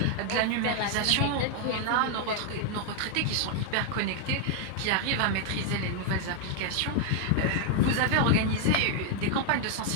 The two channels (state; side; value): different; both; correlation 0.00